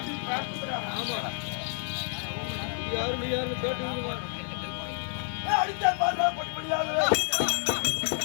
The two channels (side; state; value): right; silent; 58 dB below the other